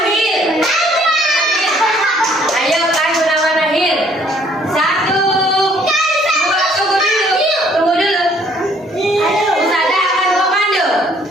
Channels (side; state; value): both; normal; correlation 0.61